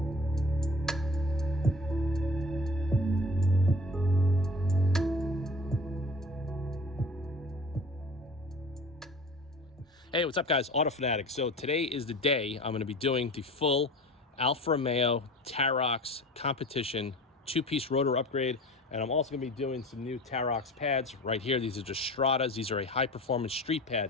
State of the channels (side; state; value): both; normal; correlation 0.40